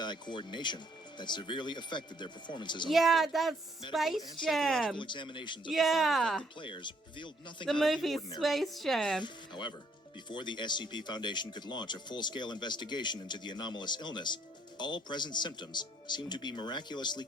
coordination that severely affected their performances on the Yeah, field. that's Space Jam. Examinations of Yeah. the players revealed nothing The out of the movie ordinary. Space Jam. However, before the SCP Foundation could launch a full-scale investigation into the anomalous illness, all present symptoms seemed to be miraculously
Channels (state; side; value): normal; both; correlation 0.67